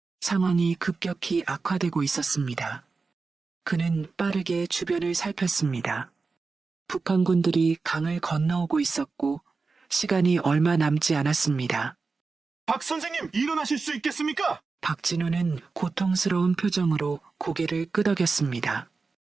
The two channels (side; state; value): left; quieter; 4.3 dB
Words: 상황이 급격히 악화되고 있었습니다. 그는 빠르게 주변을 살폈습니다. 북한군들이 강을 건너오고 있었고 시간이 얼마 남지 않았습니다. 박 선생님, 일어나실 수 있겠습니까? 박진우는 고통스러운 표정으로 고개를 끄덕였습니다.